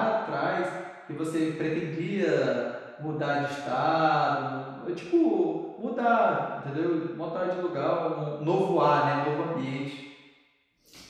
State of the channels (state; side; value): identical; both; correlation 1.00